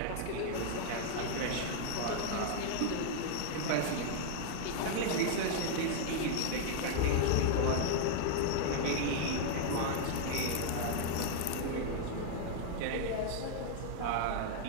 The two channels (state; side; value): different; both; correlation 0.00